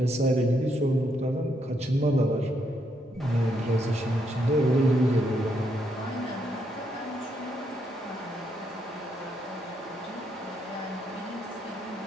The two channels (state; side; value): normal; both; correlation 0.76